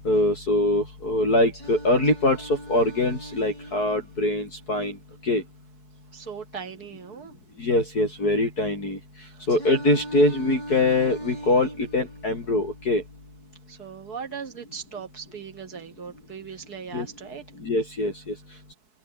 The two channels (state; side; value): late; right; 4.7 ms